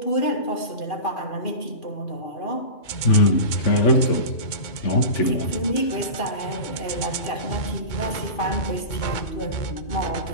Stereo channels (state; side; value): late; right; 2.3 ms